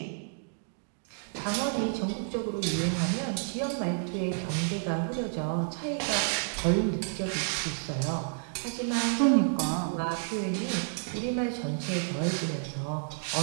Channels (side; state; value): left; silent; digital silence